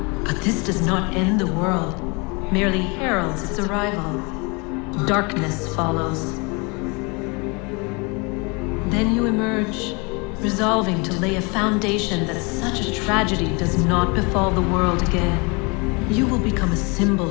But this does not end the world, merely heralds its arrival. Darkness follows. Then you emerge, resolving to lay a foundation that such a tragedy does not befall the world again. You will become a symbol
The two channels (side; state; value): right; quieter; 29.7 dB